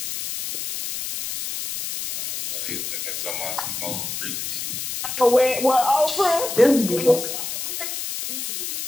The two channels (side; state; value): left; noise; hiss, 5 dB below the sound